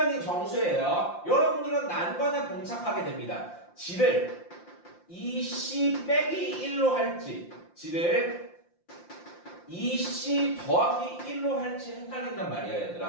정수예요. 여러분들은 난관에 봉착하게 됩니다. g를 2c 빼기 1로 할지, g를 2c 더하기 1로 할지 헷갈린단 말이야,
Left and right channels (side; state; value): right; late; 5.7 ms